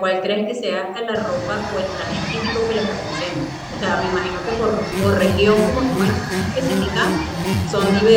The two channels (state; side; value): identical; both; correlation 1.00